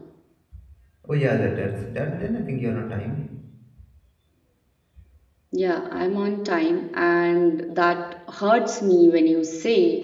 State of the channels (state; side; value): identical; both; correlation 1.00